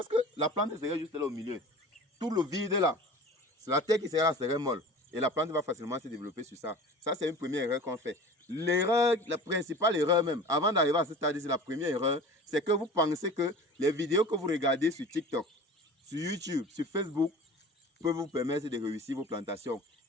que la plante serait juste là au milieu. Tout le vide là, c'est la terre qui serait là, serait molle. Et la plante va facilement se développer sur ça. Ça, c'est une première erreur qu'on fait. L'erreur, la principale erreur même, avant d'arriver à ce stade, c'est la première erreur, c'est que vous pensez que les vidéos que vous regardez sur TikTok, sur YouTube, sur Facebook, peuvent vous permettre de réussir vos plantations.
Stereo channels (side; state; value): both; normal; correlation 0.39